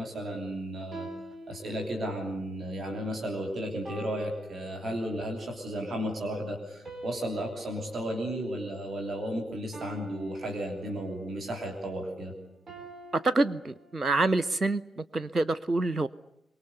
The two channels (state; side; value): normal; both; correlation 0.81